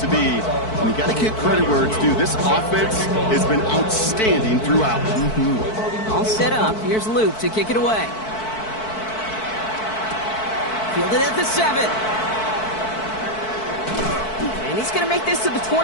be. And you got to give credit where it's due. This offense has been outstanding throughout. All set up. Here's Luke to kick it away. Fielded at the 7. And he's going to make this to the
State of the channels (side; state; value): right; late; 4.6 ms